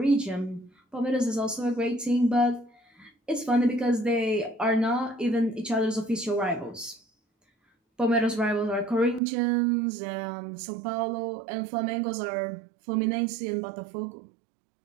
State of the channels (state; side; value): drops out; left; at 9.2 s